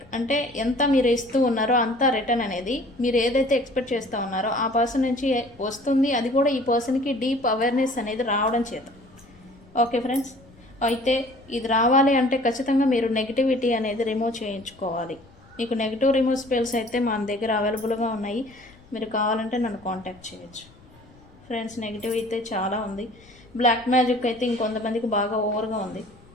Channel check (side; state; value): left; noise; rumble, 26 dB below the sound